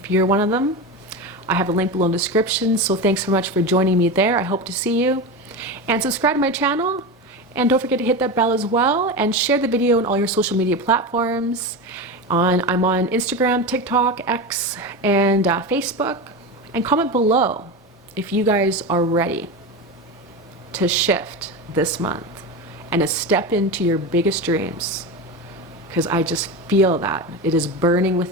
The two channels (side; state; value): both; normal; correlation 0.22